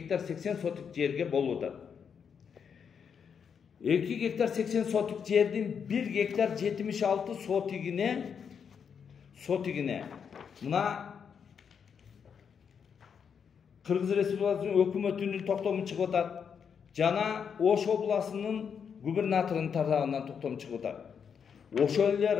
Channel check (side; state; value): right; quieter; 7.0 dB